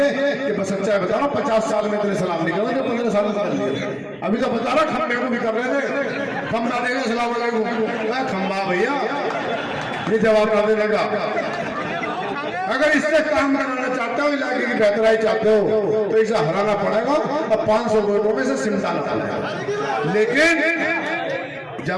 कि बस सच्चाई बता रहा हूं, 50 साल में इतने सलाम नहीं करेंगे, 15 साल में कर लिए। अभी तो बता रहा खंबे को भी कर रहे थे, खंबा देगा सलाम अलैकुम, खंबा भैया ये जवाब ना देने का। अगर इससे काम कराना चाहते हो, इलाके की बेहतराई चाहते हो, तो इसे हराना पड़ेगा और 500 वोटों में से सिमटाना पड़ेगा। लेकिन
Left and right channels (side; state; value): both; identical; correlation 1.00